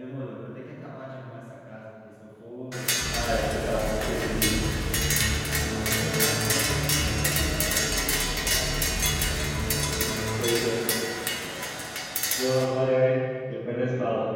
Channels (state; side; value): identical; both; correlation 1.00